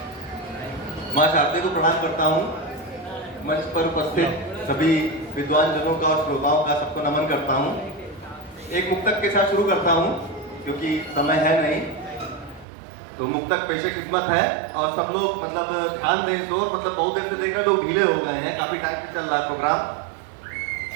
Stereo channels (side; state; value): left; drops out; at 12.7 s